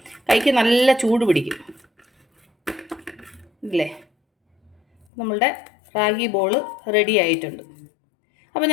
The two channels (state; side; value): drops out; right; at 5.1 s